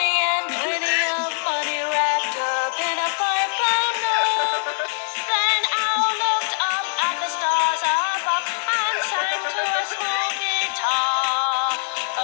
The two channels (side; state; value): right; silent; digital silence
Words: and plenty of money wrapped up in a 5-pound note. Then Owl looked up at the stars above and sang to a small guitar.